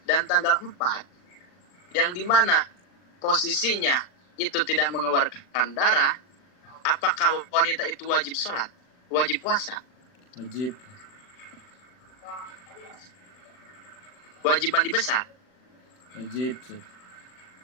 dan tanggal 4 yang dimana posisinya itu tidak mengeluarkan darah, apakah wanita itu wajib sholat? Wajib puasa? Wajib. Wajib mandi besar? Wajib Ustaz.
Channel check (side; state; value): right; late; 40 ms